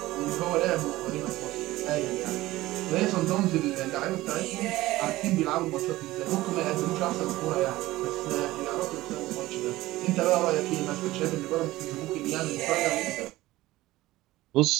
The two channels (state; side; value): quieter; left; 17.6 dB